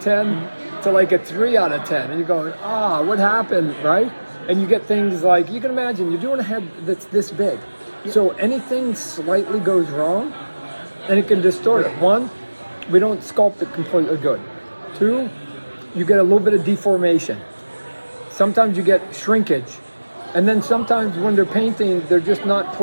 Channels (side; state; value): both; inverted; correlation -1.00